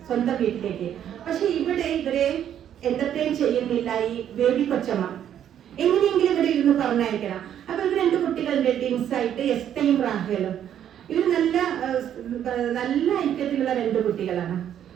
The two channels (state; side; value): quieter; left; 10.0 dB